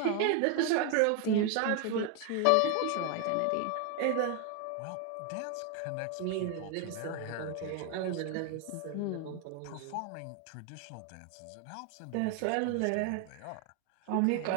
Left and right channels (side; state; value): both; different; correlation 0.01